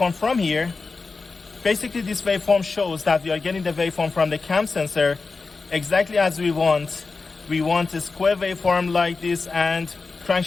from here, Basically, this waveform shows that we are getting the waveform from the cam sensor exactly as we want. We want a square waveform like this, and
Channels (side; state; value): right; quieter; 4.2 dB